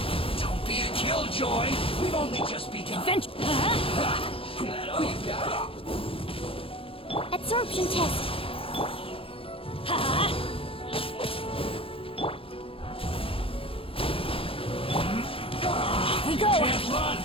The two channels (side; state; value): right; late; 0.27 ms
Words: Don't be a killjoy! We've only just begun. Adventure. Oh, you got it. Absorption test. We go. Can't run!